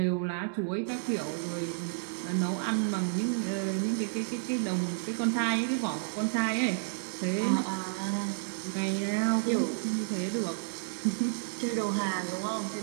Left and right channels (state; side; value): silent; left; 57 dB below the other